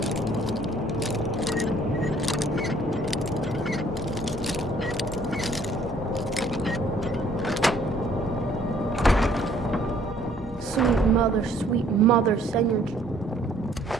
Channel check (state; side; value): normal; both; correlation 0.60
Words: Sweet mother, send your